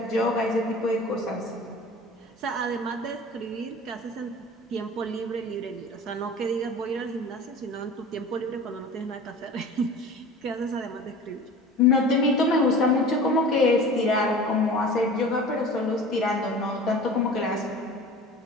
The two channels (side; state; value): both; normal; correlation 0.39